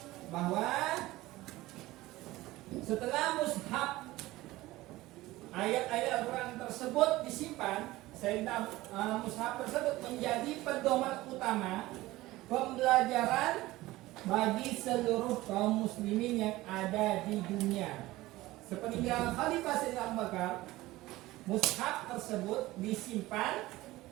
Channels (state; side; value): quieter; left; 18.1 dB